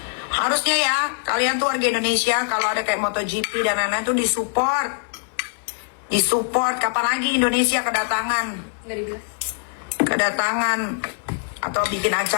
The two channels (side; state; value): right; silent; 64 dB below the other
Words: Harusnya ya kalian tuh warga Indonesia kalau ada kayak MotoGP dan lain-lain tuh disupport. Kapan lagi Indonesia kedatangan atau bikin